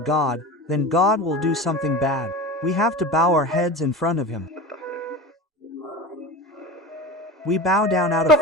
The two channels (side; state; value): both; normal; correlation 0.31